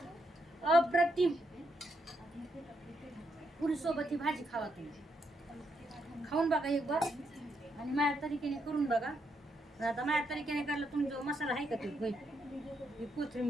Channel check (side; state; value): both; normal; correlation 0.79